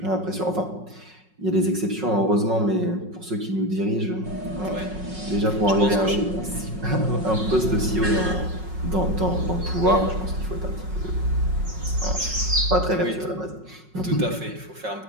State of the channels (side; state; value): left; late; 5.4 ms